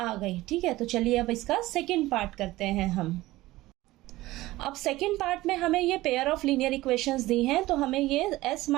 गई। ठीक है, तो चलिए अब इसका सेकंड पार्ट करते हैं हम। अब सेकेंड पार्ट में हमें ये पेयर ऑफ लीनियर इक्वेशंस दी हैं, तो हमें ये s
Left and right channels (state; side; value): quieter; left; 17.9 dB